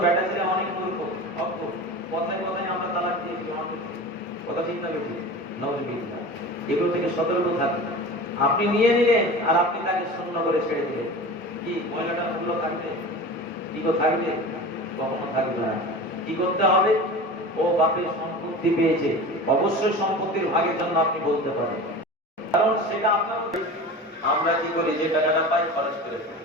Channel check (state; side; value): normal; both; correlation 0.33